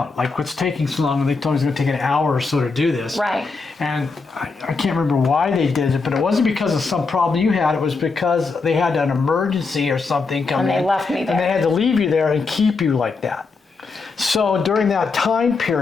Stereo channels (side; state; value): right; quieter; 4.3 dB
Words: Like, what's taking so long? And they told me it was going to take an hour or so to do this. Right. And I can't remember why they did it, but it wasn't because of some problem you had. It was because they had an emergency or something come in. And they left me there. And they had to leave you there and keep you like that. So during that time